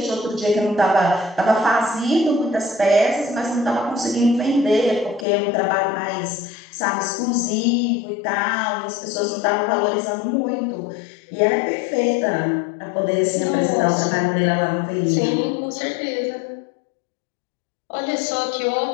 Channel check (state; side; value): drops out; right; at 5.2 s